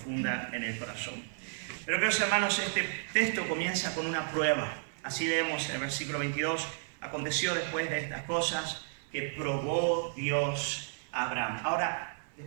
en el corazón. Pero queridos hermanos, este texto comienza con una prueba. Así leemos el versículo 22. Aconteció después de estas cosas que probó Dios a Abraham. Ahora,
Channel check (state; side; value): silent; left; digital silence